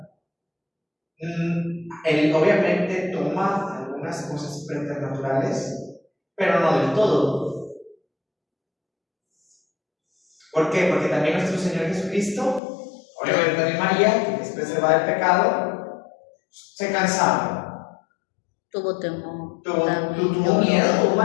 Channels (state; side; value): drops out; right; at 12.6 s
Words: Él obviamente toma algunas cosas preternaturales, pero no del todo. ¿Por qué? Porque también nuestro Señor Jesucristo, obviamente también María, que es preservada del pecado, se cansaba. Tuvo temor. Tuvo miedo,